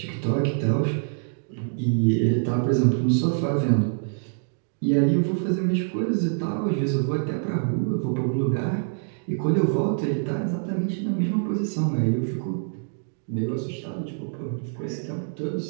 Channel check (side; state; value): left; silent; digital silence